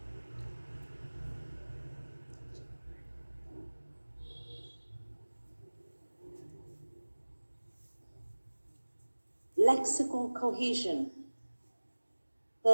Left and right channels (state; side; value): inverted; both; correlation -1.00